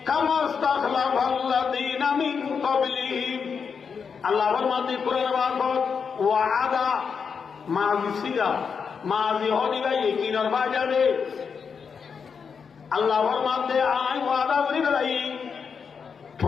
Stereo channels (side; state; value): right; quieter; 6.1 dB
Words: كما استخلف الذين من قبلهم আল্লাহর মাঝে কোরআন বাবদ ওয়াদা মাজি সিগা মাজি হদি ভাই কিনার বাজারে আল্লাহর মাঝে আই ওয়াদা করি বেড়াই